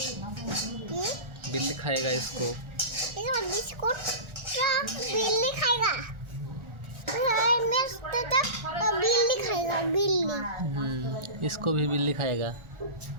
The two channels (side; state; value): left; late; 1.4 ms